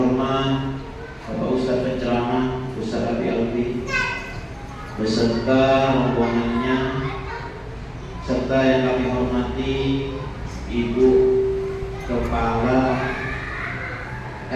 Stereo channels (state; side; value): identical; both; correlation 1.00